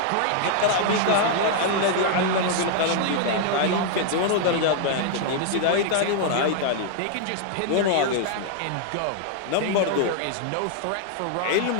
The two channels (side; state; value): both; different; correlation 0.00